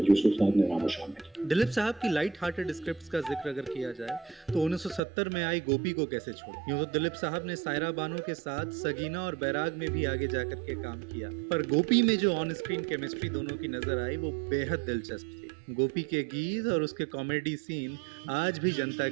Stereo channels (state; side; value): drops out; left; at 5.0 s